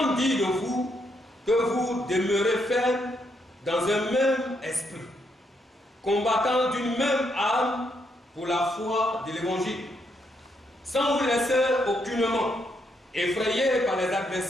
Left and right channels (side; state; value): both; normal; correlation 0.77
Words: dire de vous que vous demeurez ferme dans un même esprit, combattant d'une même âme pour la foi de l'évangile, sans vous laisser aucunement effrayer par les